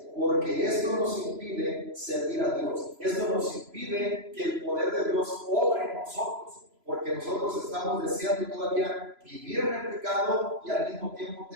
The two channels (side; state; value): left; late; 3.0 ms